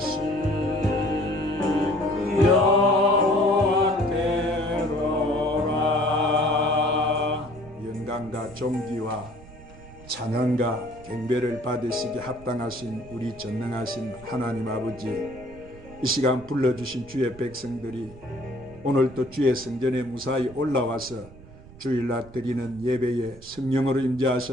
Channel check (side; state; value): right; noise; rumble, 19 dB below the sound